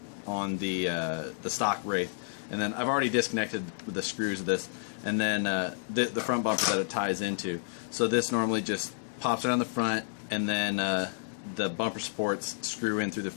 on the stock Wraith. And then I've already disconnected the screws of this, and then the front bumper that it ties into. So this normally just pops around the front, and then the bumper supports screw in through the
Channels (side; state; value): right; silent; digital silence